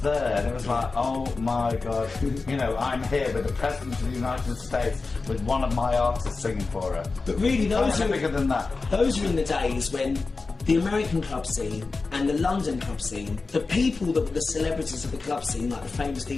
there, and it was like, oh my God, you know, I'm here with the President of the United States with one of my artists singing for her. But really, Those are bigger than that. those were in the days when the American club scene and the London club scene, the people that were the celebrities of the club scene, like the famous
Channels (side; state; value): right; quieter; 4.0 dB